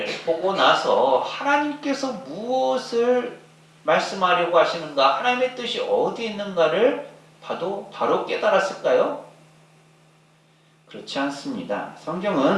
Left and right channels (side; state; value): both; identical; correlation 1.00